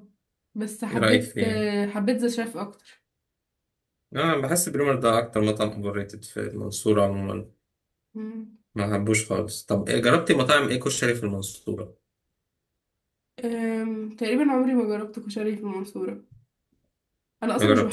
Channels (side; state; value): both; identical; correlation 1.00